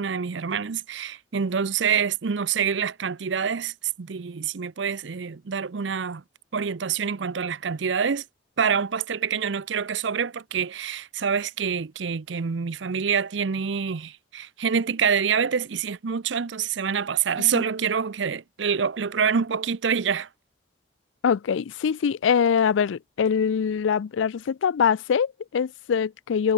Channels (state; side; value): normal; both; correlation -0.15